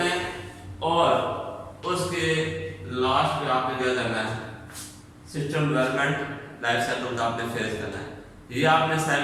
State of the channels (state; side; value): identical; both; correlation 1.00